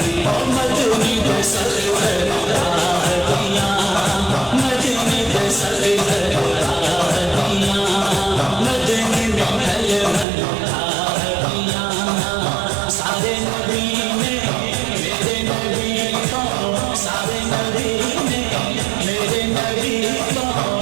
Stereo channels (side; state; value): left; drops out; at 10.2 s